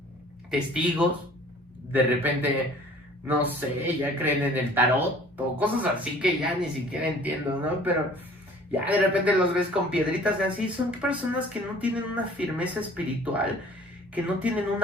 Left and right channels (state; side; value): normal; both; correlation 0.51